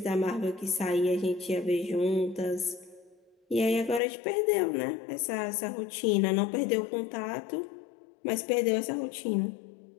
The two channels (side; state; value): right; drops out; at 4.0 s